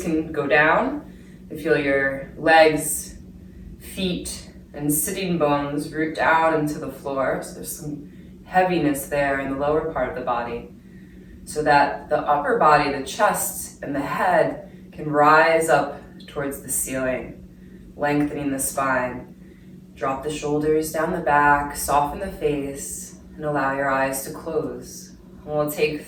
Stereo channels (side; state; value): both; identical; correlation 1.00